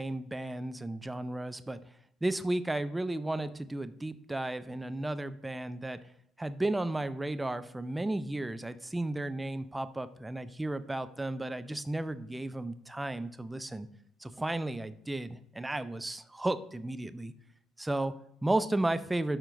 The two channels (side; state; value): both; normal; correlation 0.97